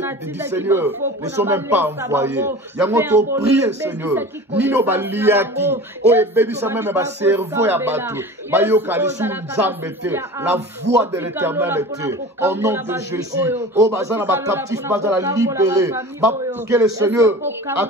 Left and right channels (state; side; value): normal; both; correlation 0.37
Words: Seigneur ne sont même pas envoyés. Yangoto prier Seigneur. Nino baliaki. O baby ça même ba cerveau ya bateau. Ba yo kalisu nzambete. La voix de l'Éternel était. Au nom de Jésus. O bazana ba captif bazana libéré. Que le Seigneur